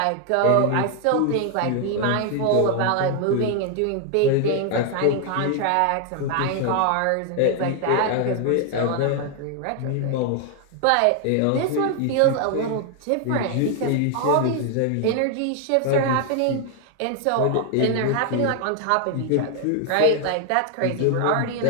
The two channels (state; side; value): different; both; correlation 0.00